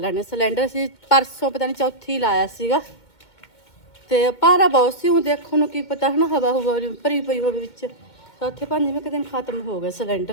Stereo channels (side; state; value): right; late; 2.2 ms